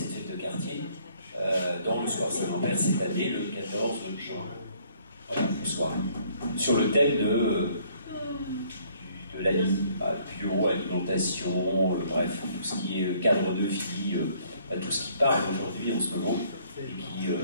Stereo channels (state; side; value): inverted; both; correlation -0.63